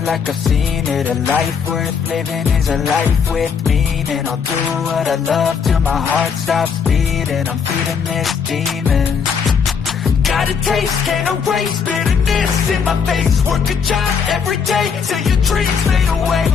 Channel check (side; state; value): right; quieter; 6.4 dB